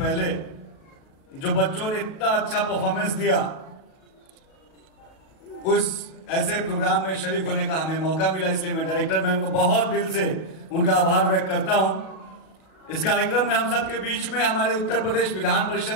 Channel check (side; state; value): right; late; 36 ms